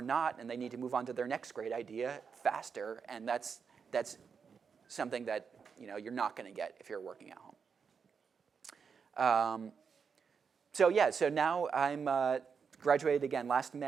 not, and they need to move on to their next great idea faster. And that's something that you're not going to get if you're working at home. So now I'm graduated again last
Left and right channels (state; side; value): quieter; left; 6.1 dB